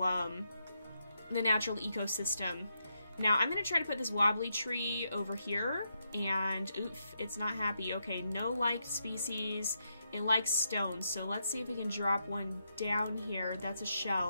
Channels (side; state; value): both; inverted; correlation -0.82